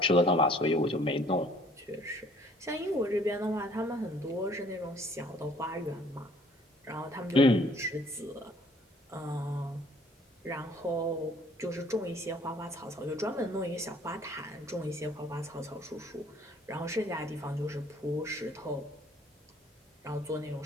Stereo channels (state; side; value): normal; both; correlation 0.58